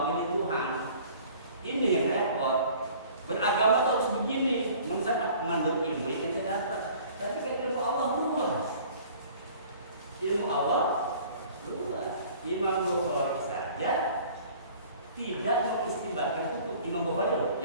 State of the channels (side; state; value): both; inverted; correlation -0.50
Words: Tuhan. Ini yang repot. Beragama harus begini, menurut ilmu yang kita dapat. Tapi kan ilmu Allah luas. Ilmu Allah luas. Imam Bukhari saja tidak mengistimbatkan hukum. Imam Bukhari